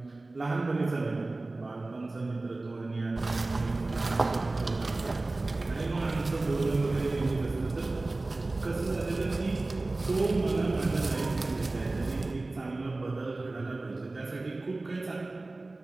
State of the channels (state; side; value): quieter; left; 3.1 dB